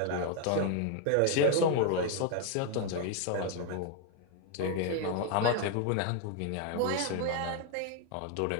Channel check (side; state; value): both; different; correlation 0.00